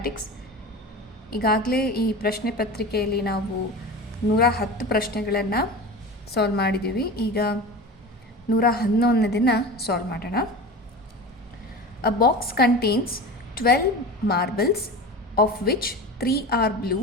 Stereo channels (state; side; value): normal; both; correlation 0.31